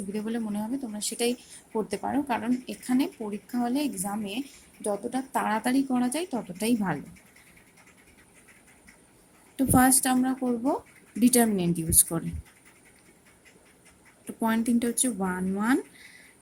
বলে মনে হবে তোমরা সেটাই করতে পারো, কারণ এখানে পরীক্ষা হলে এক্সামে যতটা তাড়াতাড়ি করা যায় ততটাই ভালো। তো ফার্স্ট আমরা করব ডিটারমিনেন্ট ইউজ করে। তো পয়েন্ট তিনটা হচ্ছে 1 1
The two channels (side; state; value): both; identical; correlation 1.00